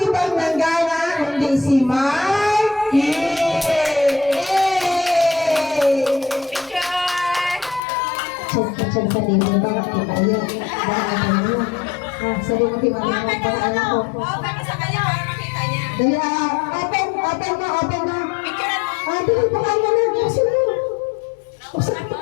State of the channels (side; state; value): right; drops out; at 7.8 s